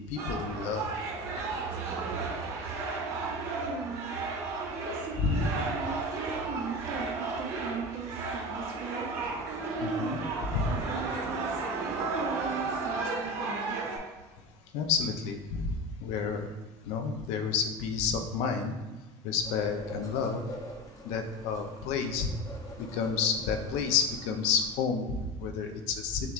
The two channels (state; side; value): normal; both; correlation 0.26